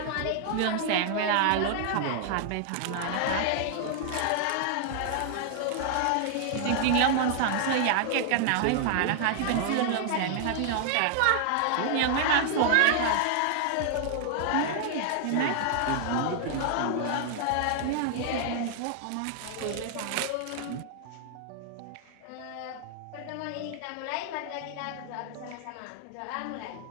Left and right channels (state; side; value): different; both; correlation 0.00